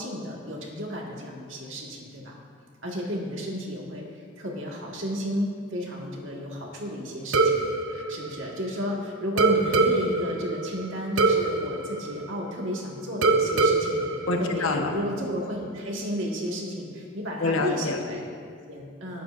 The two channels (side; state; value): both; normal; correlation 0.15